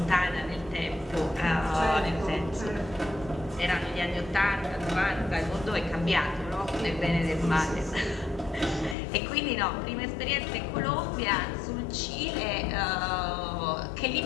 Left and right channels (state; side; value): drops out; right; at 9.0 s